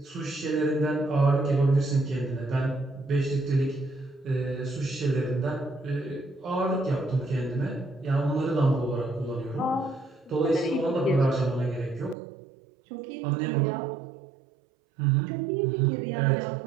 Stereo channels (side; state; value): left; drops out; at 12.2 s